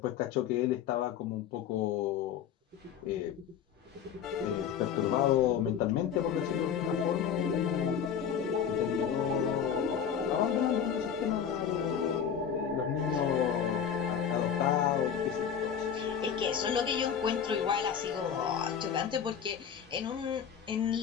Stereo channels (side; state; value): right; quieter; 8.1 dB